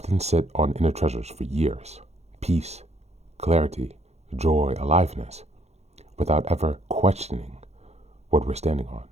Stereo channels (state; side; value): late; left; 0.31 ms